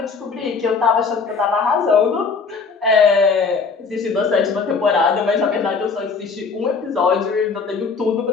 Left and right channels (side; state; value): right; quieter; 5.0 dB